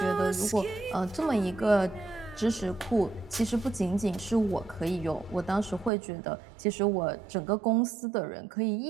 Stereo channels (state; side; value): drops out; left; at 5.9 s